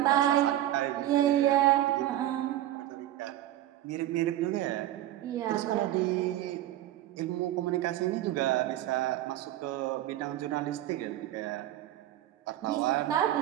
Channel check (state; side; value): quieter; left; 13.6 dB